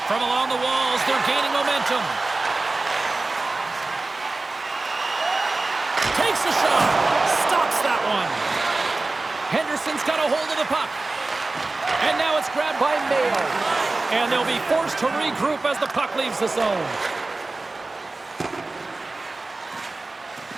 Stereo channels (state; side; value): quieter; left; 3.3 dB